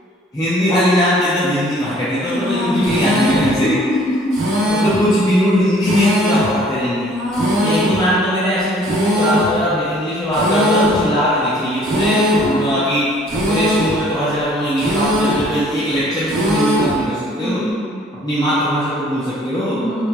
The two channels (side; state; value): both; normal; correlation 0.56